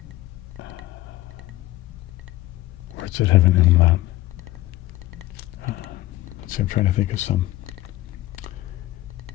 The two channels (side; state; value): right; quieter; 16.7 dB